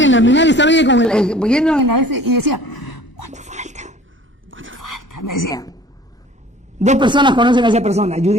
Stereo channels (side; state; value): both; normal; correlation 0.48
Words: el Almenara estaba ella yendo en la y decía, ¿cuánto falta? Me decía. 2 personas conocen a esa persona,